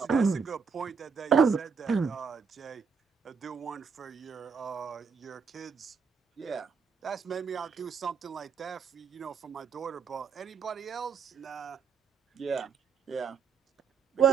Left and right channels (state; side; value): quieter; left; 5.9 dB